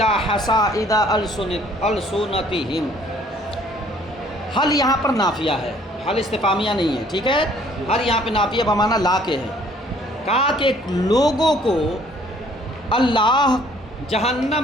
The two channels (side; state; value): both; normal; correlation 0.59